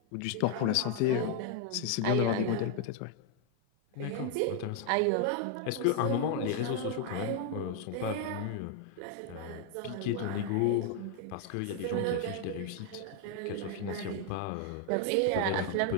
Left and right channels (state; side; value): different; both; correlation 0.01